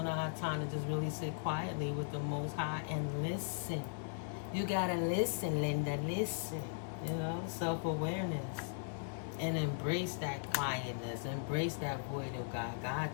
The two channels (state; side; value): silent; right; 52 dB below the other